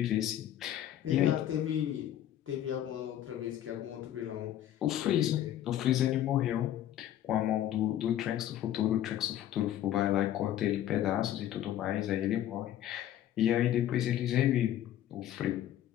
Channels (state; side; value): quieter; right; 11.9 dB